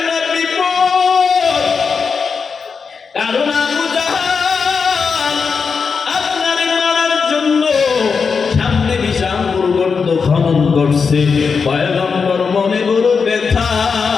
না বিপদ। কারণ আবু জাহাল আপনারে মারার জন্য সামনে বিশাল গর্ত খনন করছে। পয়গম্বর মনে বড় ব্যথা,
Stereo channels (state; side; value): quieter; right; 5.5 dB